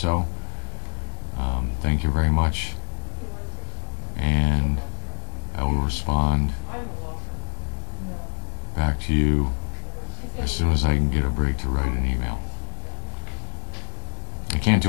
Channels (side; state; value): right; silent; 61 dB below the other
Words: Thank you very much, and I will respond back to you as soon as I can get a break to write an email. I can't